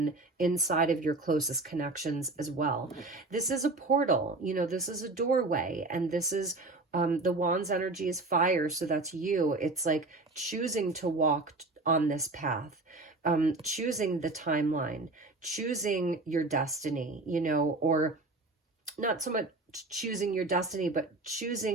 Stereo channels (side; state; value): left; quieter; 3.2 dB